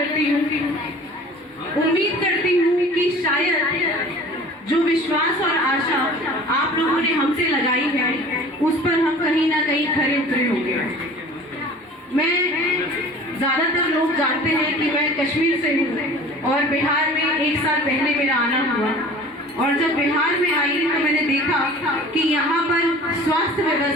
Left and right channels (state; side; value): normal; both; correlation 0.44